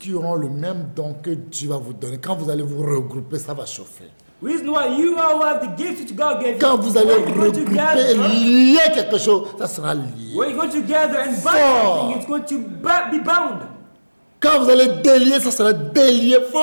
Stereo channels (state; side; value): inverted; both; correlation -1.00